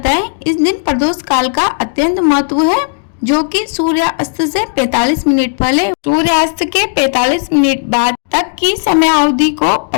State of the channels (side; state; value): right; silent; digital silence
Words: है। इस दिन प्रदोष काल का अत्यंत महत्व है, जो कि सूर्यास्त से 45 मिनट पहले सूर्यास्त के 45 मिनट बाद तक की समय अवधि को